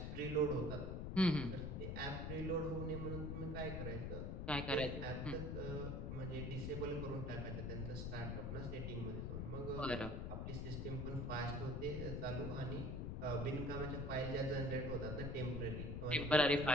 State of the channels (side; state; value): left; noise; rumble, 3 dB below the sound